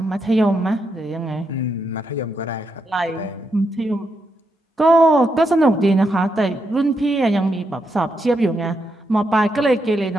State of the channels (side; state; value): both; normal; correlation 0.82